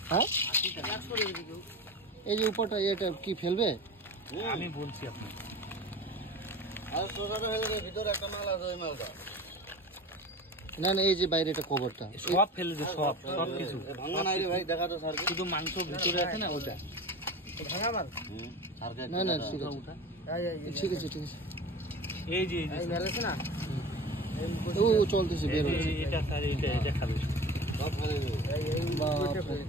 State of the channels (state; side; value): normal; both; correlation 0.34